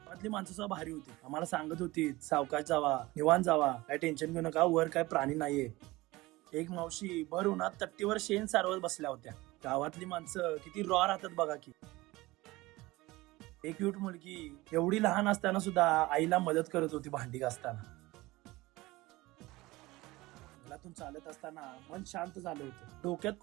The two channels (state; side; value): quieter; left; 20.2 dB